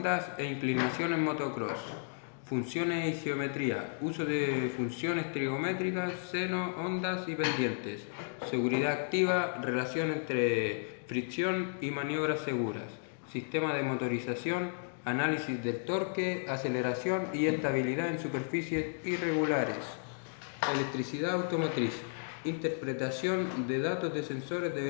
e inclinación en motocross. Funciones y geometría. Uso de funciones trigonométricas, seno, ondas y pendientes. Seguridad activa, relación entre fricción y maniobras seguras. Sistema de motorización, análisis del torque, aceleración y estabilidad en superficies irregulares. Electricidad automotriz. Interpretación de datos de sensores de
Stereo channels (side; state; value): right; silent; digital silence